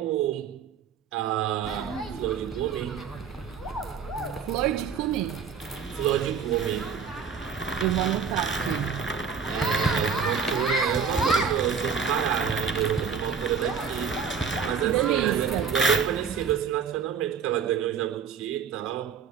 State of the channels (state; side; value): quieter; left; 6.5 dB